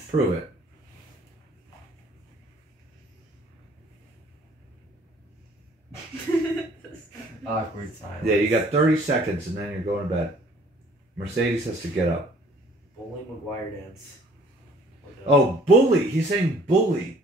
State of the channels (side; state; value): both; normal; correlation 0.56